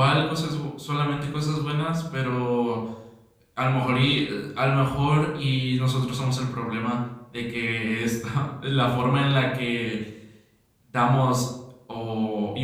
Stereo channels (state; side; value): identical; both; correlation 1.00